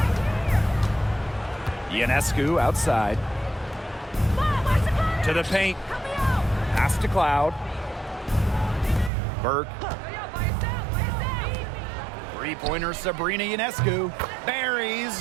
Ionescu outside. To the paint. Pass to Cloud. Burke. Three-pointer Sabrina Ionescu. Buries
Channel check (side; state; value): left; drops out; at 9.1 s